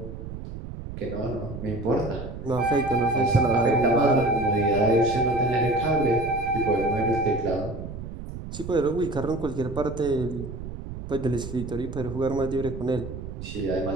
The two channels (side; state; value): right; noise; rumble, 9 dB below the sound